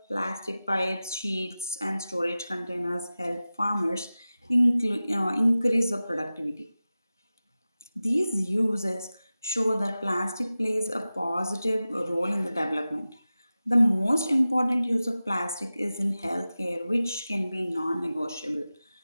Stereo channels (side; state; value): both; inverted; correlation -0.95